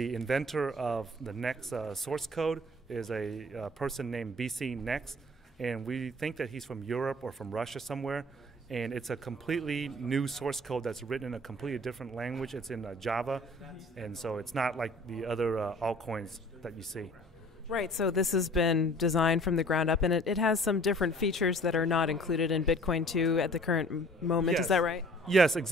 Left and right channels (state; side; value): normal; both; correlation 0.50